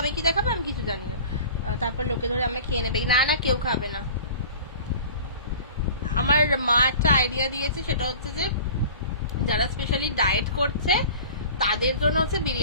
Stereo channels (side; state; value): both; inverted; correlation -0.41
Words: কি দেখাবে আমি কিছু জানি না, তারপর লোকে ধরে আমায় খেয়ে নেবে। না না কেউ খাবে না। আমার মা একটা আইডিয়া দিয়েছে, সেটা হচ্ছে যে যারা স্পেশালি ডায়েট করছে তাদের জন্য হচ্ছে